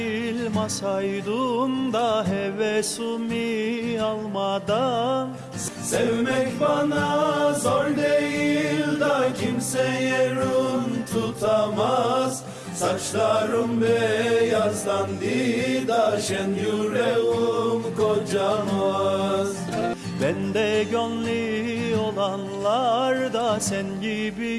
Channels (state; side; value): identical; both; correlation 1.00